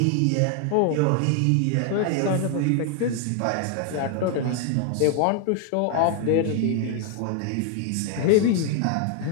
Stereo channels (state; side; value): different; both; correlation 0.00